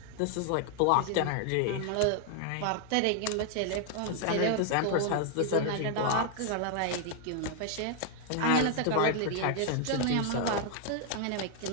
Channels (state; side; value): different; both; correlation 0.00